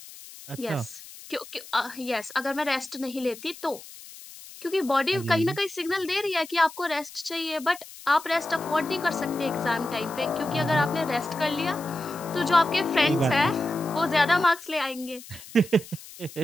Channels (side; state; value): left; noise; hiss, 17 dB below the sound